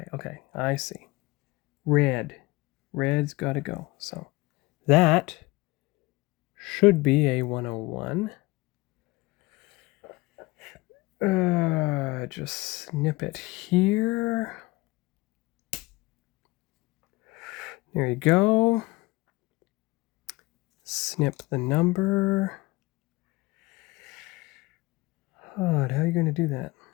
I see. Red. Red's got to go. So that should be a 101. Just snip it here. There you go. Snip the number. Oh, how are you going to do that?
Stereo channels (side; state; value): right; quieter; 21.7 dB